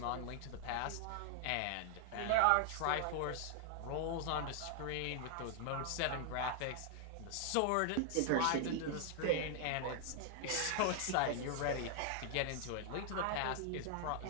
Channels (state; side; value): different; both; correlation 0.00